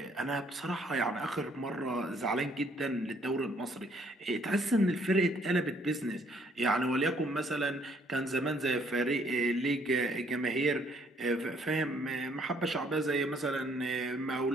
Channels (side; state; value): both; normal; correlation 0.65